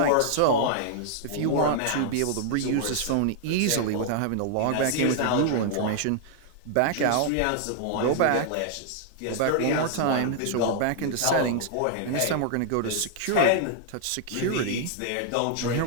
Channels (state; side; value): different; both; correlation -0.01